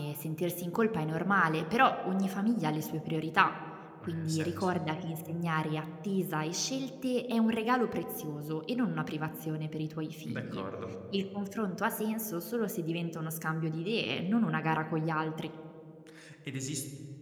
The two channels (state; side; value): identical; both; correlation 1.00